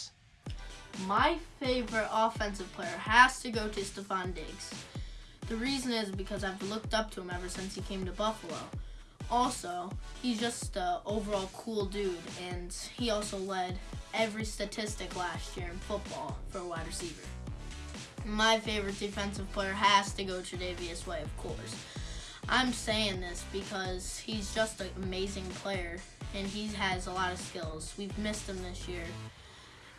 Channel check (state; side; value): identical; both; correlation 1.00